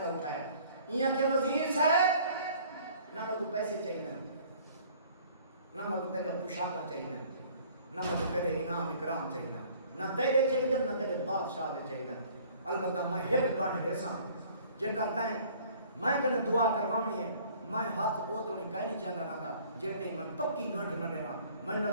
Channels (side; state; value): both; inverted; correlation -0.54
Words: اٹھایا ایاں کہ وزیر صاحب نہ کو پیسے چاہیے نہ کو تیرے پوشاکاں چاہیے نہ کو تیرے انعام اکرام چاہیے نہ تیرے چاہیے نہ تیرے بادشاہ دے چاہیے. البتہ میں ہک باٹھ دیساں جے کرتا ہے میں کنے دعا کروانی ہے میں ہاتھ او تو نہیں کہیں نہیں چاہتا نہ تھا جیتے میں پکی گھنٹ نہ دیوا میں نے